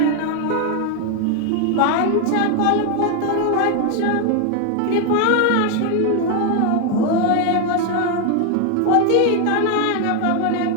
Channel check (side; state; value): both; different; correlation 0.01